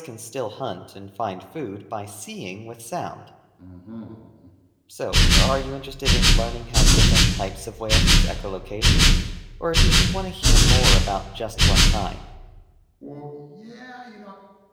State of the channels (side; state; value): both; identical; correlation 1.00